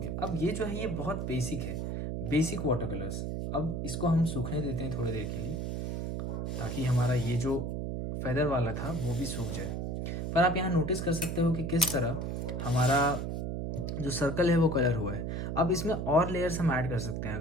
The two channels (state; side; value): noise; right; hum, 2 dB below the sound